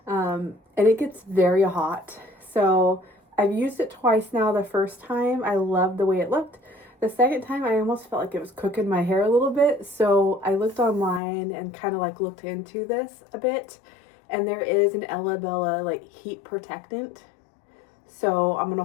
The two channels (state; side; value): drops out; right; at 11.2 s